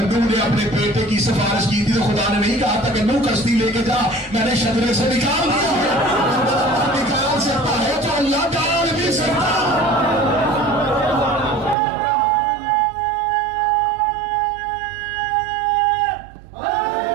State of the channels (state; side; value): drops out; left; at 11.8 s